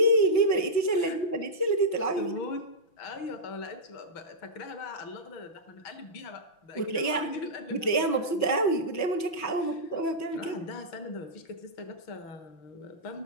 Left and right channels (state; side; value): late; right; 6.1 ms